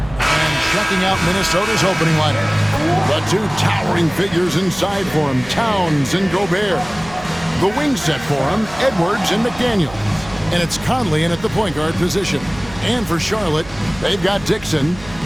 checking out Minnesota's opening lineup, the two towering figures inside for him, Towns and Gobert. The wing set for him, Edwards and McDaniels. And it's Conley in at the point guard position. And for Charlotte, they've got Dixon.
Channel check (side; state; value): right; noise; hum, 19 dB below the sound